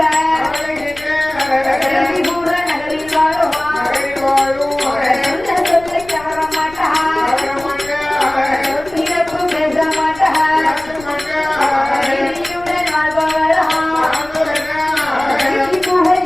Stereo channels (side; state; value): left; noise; rumble, 20 dB below the sound